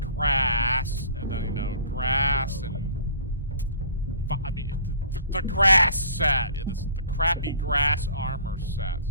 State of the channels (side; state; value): both; inverted; correlation -0.47